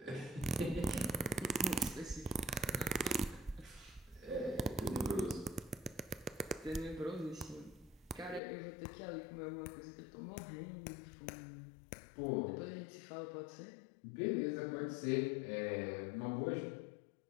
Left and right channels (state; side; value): drops out; right; at 8.4 s